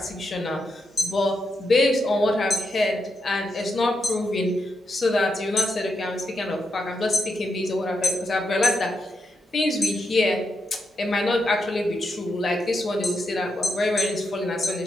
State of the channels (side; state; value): both; normal; correlation 0.84